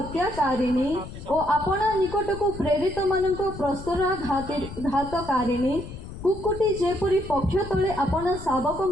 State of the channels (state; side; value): noise; left; rumble, 12 dB below the sound